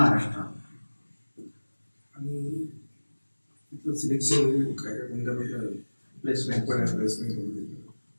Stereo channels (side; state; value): both; inverted; correlation -1.00